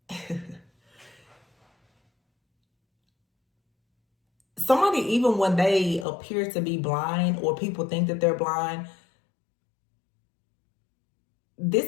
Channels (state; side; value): drops out; right; at 6.1 s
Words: somebody, even when they appear to be blind or people think that they're blind,